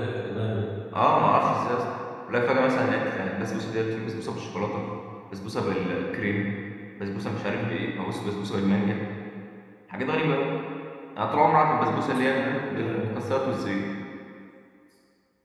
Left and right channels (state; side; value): identical; both; correlation 1.00